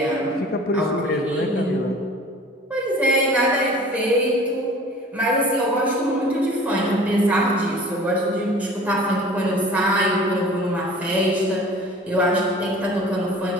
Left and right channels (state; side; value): normal; both; correlation 0.45